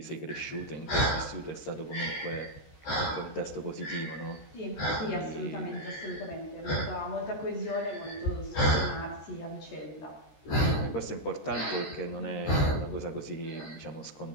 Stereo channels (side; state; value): right; late; 14 ms